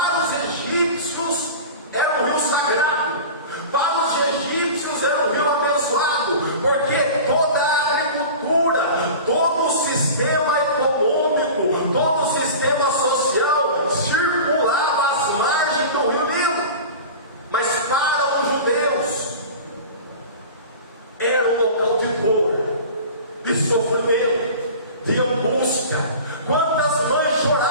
os egípcios era um rio sagrado, para os egípcios era um rio abençoado, porque toda a agricultura, todo o sistema econômico, todo o sistema social circulava às margens do rio Nilo. Mas para os judeus era um local de dor, de sofrimento, de angústia. Quantas mães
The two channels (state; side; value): inverted; both; correlation -0.35